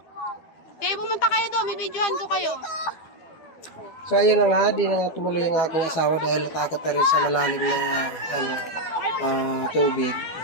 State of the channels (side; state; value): right; late; 12 ms